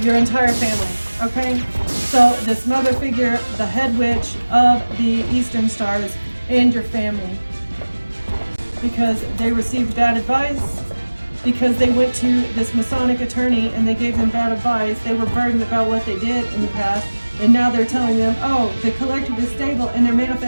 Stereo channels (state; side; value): inverted; both; correlation -1.00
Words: your entire family. Okay? So this mother figure, the head witch of the Eastern Stars, and your family. Because they received bad advice, because they went to this Masonic attorney and they gave them bad advice. They were burdened about what they did in the past, and now they're telling them, oh, the collective is stable, and they're